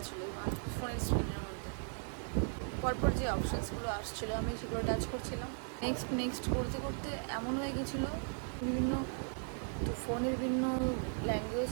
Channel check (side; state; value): left; silent; 53 dB below the other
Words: ছিল ফোনের স্ক্রিনের মধ্যে। পরপর যে অপশানসগুলো আসছিলো আমি সেগুলো টাচ করছিলাম। নেক্সট করতে করতে এমন হয়ে গেছিলো, বিভিন্ন তো ফোনের বিভিন্ন ল্যাঙ্গুয়েজ